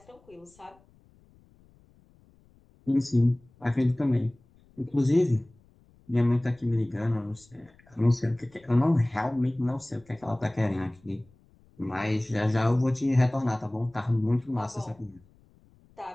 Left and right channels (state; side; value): noise; left; rumble, 30 dB below the sound